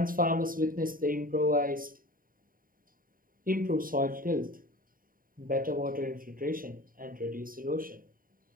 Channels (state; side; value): late; left; 0.41 ms